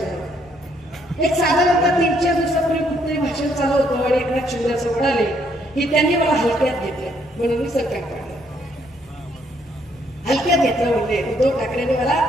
एक साधारणतः 3-4 दिवसापूर्वी कुठतरी भाषण चालू होतं आणि एकनाथ शिंदे असं म्हणाले की त्यांनी मला हलक्यात घेतलं म्हणून मी सरकार काढलं. हलक्यात घेतलं म्हणजे उद्धव ठाकरेंनी मला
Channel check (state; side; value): normal; both; correlation 0.70